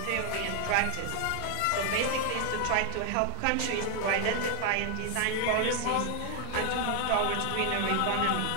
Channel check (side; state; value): both; different; correlation 0.00